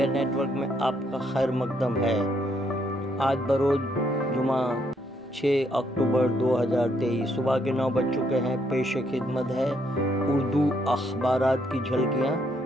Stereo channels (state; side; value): normal; both; correlation 0.72